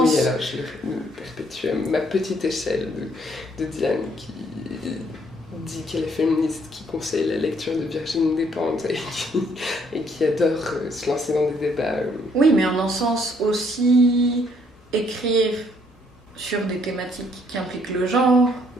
Oui, alors je le perpétue à ma petite échelle de Diane qui dit qu'elle est féministe, qui conseille la lecture de Virginie Despentes et qui adore se lancer dans des débats. Oui, mais en un sens aussi écrire sur des thématiques qui impliquent le genre,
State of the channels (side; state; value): both; normal; correlation 0.67